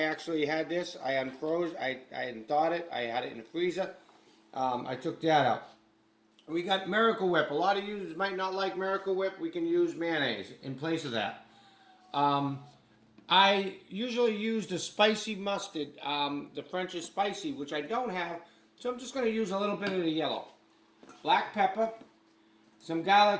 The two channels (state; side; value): identical; both; correlation 1.00